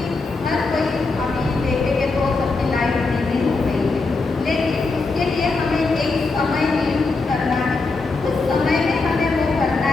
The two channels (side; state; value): right; quieter; 3.8 dB